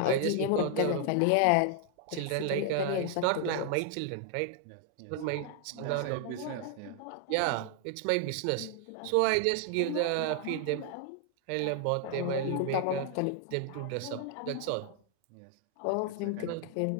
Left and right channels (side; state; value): both; different; correlation 0.00